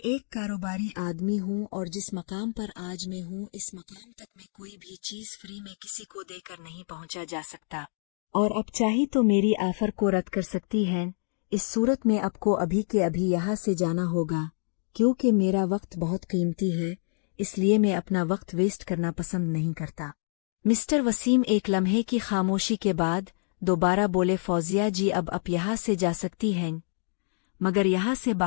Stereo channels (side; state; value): right; silent; 58 dB below the other